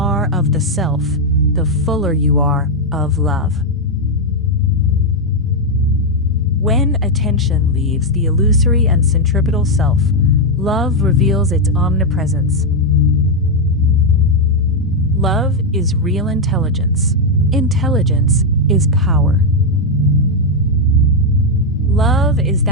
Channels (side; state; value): both; normal; correlation 0.01